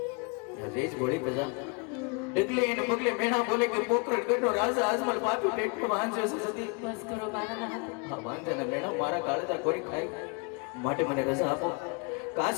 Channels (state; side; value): quieter; right; 33.9 dB